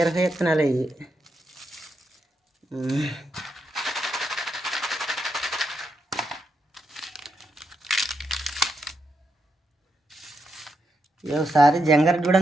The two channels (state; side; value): normal; both; correlation 0.82